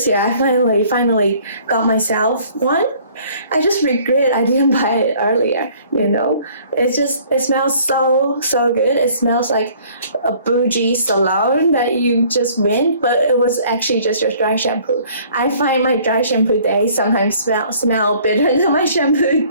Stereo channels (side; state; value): both; inverted; correlation -0.56